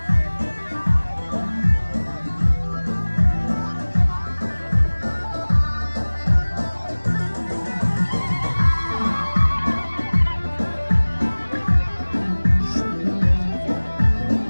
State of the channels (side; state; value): both; inverted; correlation -1.00